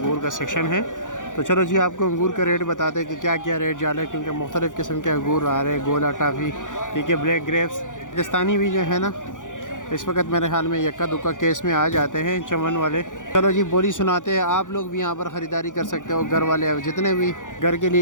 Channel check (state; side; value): late; right; 0.87 ms